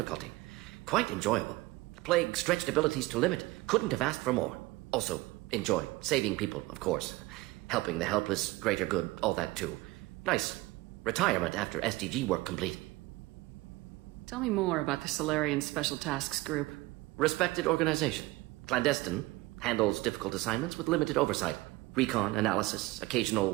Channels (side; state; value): left; quieter; 20.3 dB